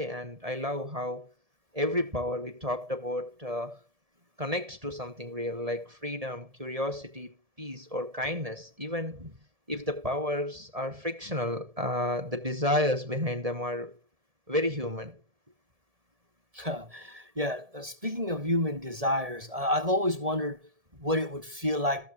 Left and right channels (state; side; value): late; left; 1.7 ms